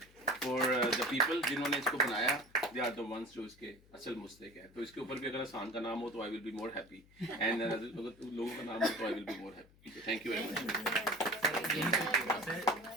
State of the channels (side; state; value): left; noise; hum, 27 dB below the sound